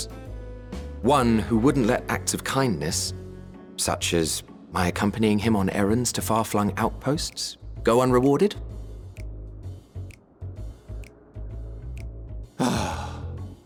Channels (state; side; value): identical; both; correlation 1.00